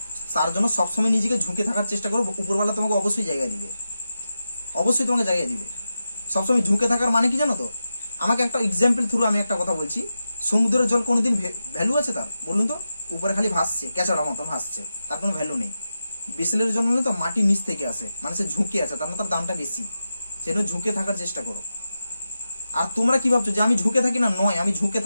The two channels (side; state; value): both; inverted; correlation -0.91